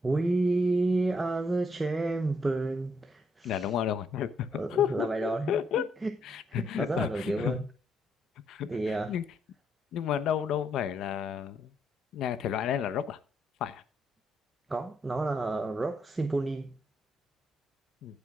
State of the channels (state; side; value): normal; both; correlation 0.74